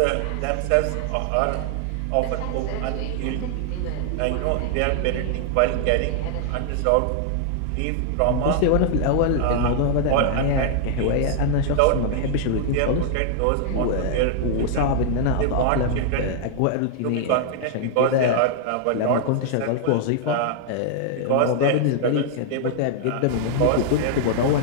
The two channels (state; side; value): different; both; correlation -0.01